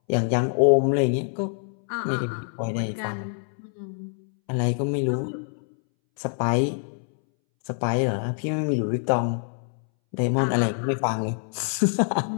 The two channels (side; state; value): right; silent; 62 dB below the other